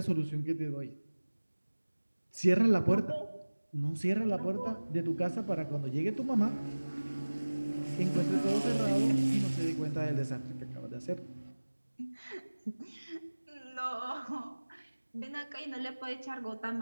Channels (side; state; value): both; inverted; correlation -1.00